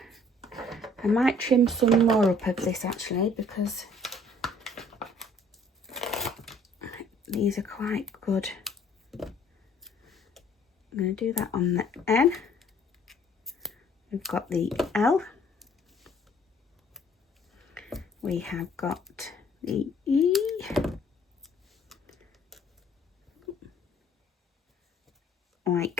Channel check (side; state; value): both; normal; correlation 0.58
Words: I might trim some more up of this actually because these are quite good. I'm going to do that on the N. We've got the L. We have got the E.